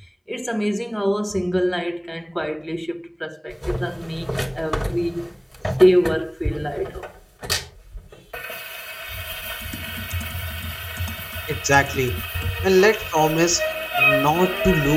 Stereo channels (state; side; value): identical; both; correlation 1.00